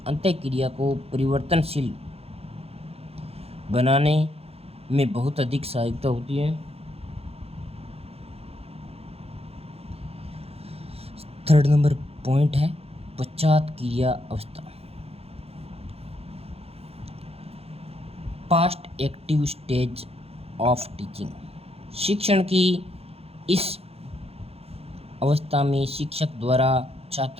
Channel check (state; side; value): late; left; 0.29 ms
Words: अंतःक्रिया को परिवर्तनशील बनाने में बहुत अधिक सहायता होती है। थर्ड नंबर पॉइंट है पश्चात क्रिया अवस्था। Past active stage of teaching. शिक्षण की इस अवस्था में शिक्षक द्वारा